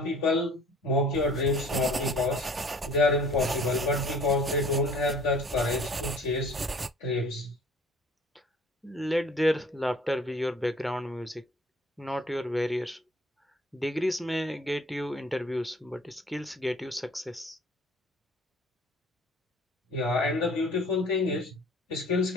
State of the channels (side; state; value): both; normal; correlation 0.51